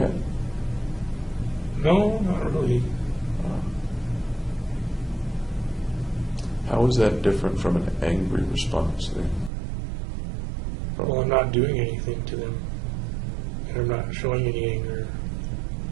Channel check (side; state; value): left; drops out; at 9.5 s